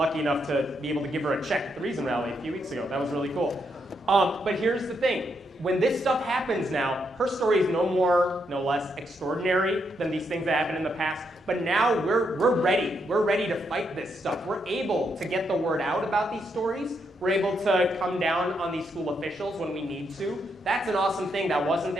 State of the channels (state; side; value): normal; both; correlation 0.79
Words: enough to be able to give her a check at the Reason Rally a few weeks ago. That was really cool. But here's the thing. When this stuff happens now, her story is no more, no less extraordinary than these things that happened in the past. But now we're ready. We're ready to fight this stuff. We're able to get the word out about these stories. We're able to come down on these school officials when we need to. That's an awesome thing that wasn't